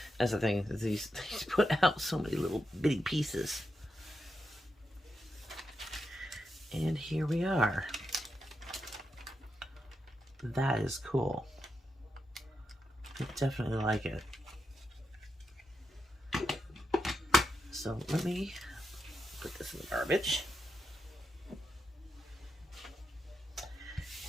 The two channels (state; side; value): normal; both; correlation 0.86